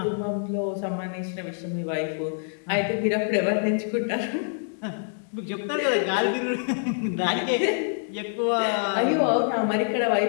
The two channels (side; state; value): right; silent; digital silence